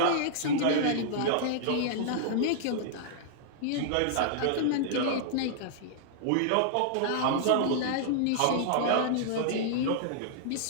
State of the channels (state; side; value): different; both; correlation -0.01